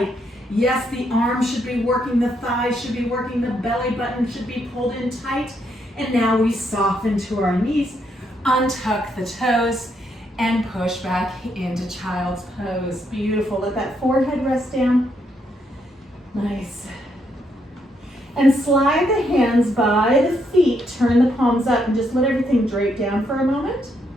Yes, the arms should be working, the thighs should be working, the belly button should be pulled in tight. And now we soften to our knees, untuck the toes, and push back into child's pose. Beautiful. Let that forehead rest down. Nice. And slide the hands by the feet, turn the palms up, and just let everything drape down for a moment.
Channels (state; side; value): normal; both; correlation 0.76